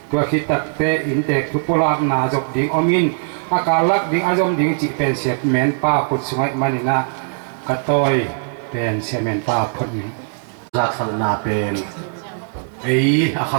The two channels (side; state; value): left; silent; digital silence